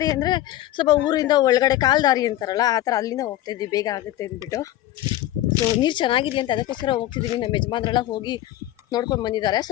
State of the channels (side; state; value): right; quieter; 14.3 dB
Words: ಅಂದರೆ ಸ್ವಲ್ಪ ಊರಿಂದ ಒಳಗಡೆ ಕಾಲು ದಾರಿ ಅಂತಾರಲ್ಲ, ಆ ಥರ ಅಲ್ಲಿಂದ ಹೋಗ್ತಾ ಇದ್ದೀವಿ, ಬೇಗ ಆಗುತ್ತೆ ಅಂದ್ಬಿಟ್ಟು. ಸೊ ನೀರು ಚೆನ್ನಾಗಿದೆ ಅಂತ ಅದಕ್ಕೋಸ್ಕರ ಹೋಗ್ತಿದ್ದೀವಿ. ನಮ್ಮ ಯಜಮಾನ್ರೆಲ್ಲ ಹೋಗಿ ನೋಡ್ಕೊಂಡು ಬಂದಿದ್ದಾರೆ.